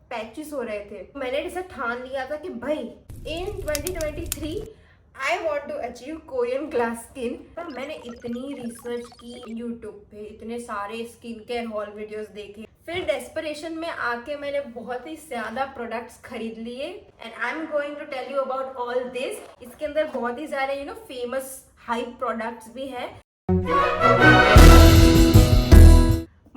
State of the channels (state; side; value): identical; both; correlation 1.00